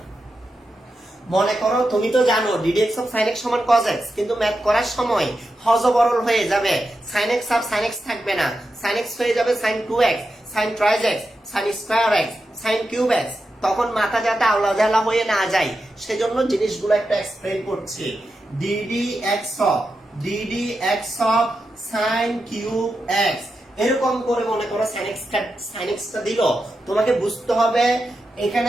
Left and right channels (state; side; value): normal; both; correlation 0.89